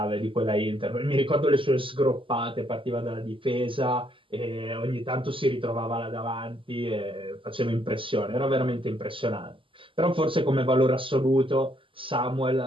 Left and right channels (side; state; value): left; late; 0.25 ms